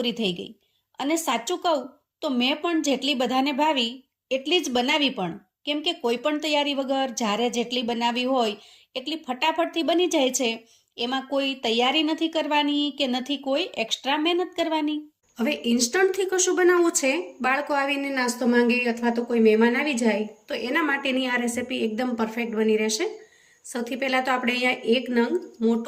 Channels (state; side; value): identical; both; correlation 1.00